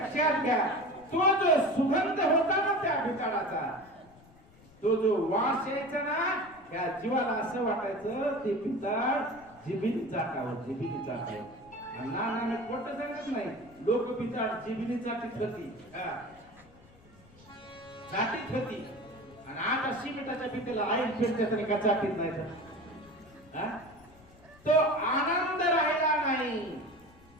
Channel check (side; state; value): left; noise; rumble, 25 dB below the sound